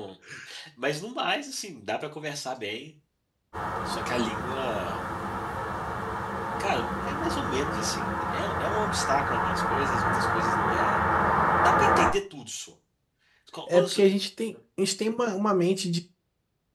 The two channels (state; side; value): identical; both; correlation 1.00